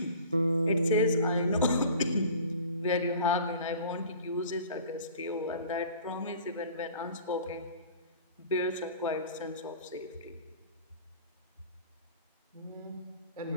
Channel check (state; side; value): inverted; both; correlation -0.45